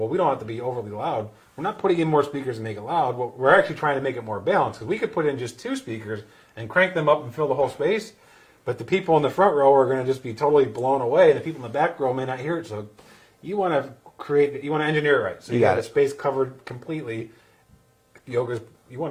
we don't have to be overly loud. We're not putting in more speakers to make it loud. We're actually trying to make it more balanced because we could put in just 2 speakers and crank them up and fill the whole space, but the people in the front row are going to just be totally blown away, and the people in the back row may not hear it. So you want to engineer it right. So you got the space covered completely. Yoga's, you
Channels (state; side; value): identical; both; correlation 1.00